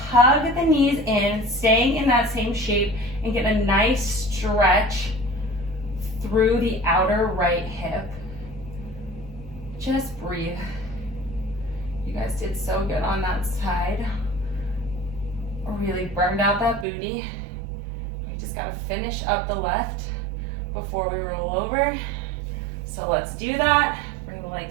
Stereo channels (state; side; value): drops out; left; at 16.9 s